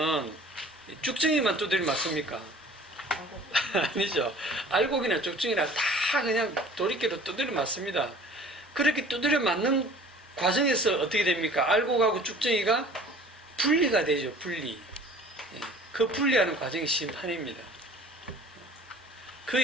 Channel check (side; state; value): both; normal; correlation 0.47